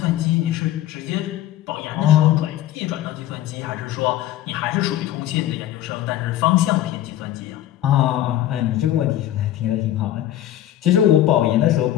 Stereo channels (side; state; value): right; quieter; 12.8 dB